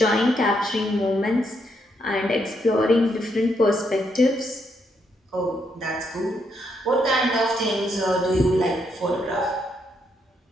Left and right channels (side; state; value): both; normal; correlation 0.77